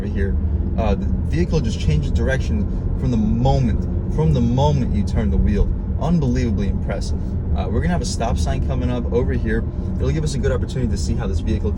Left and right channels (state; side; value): identical; both; correlation 1.00